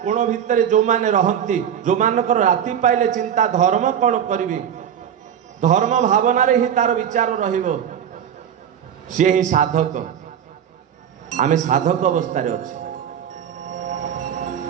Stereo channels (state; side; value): quieter; left; 9.0 dB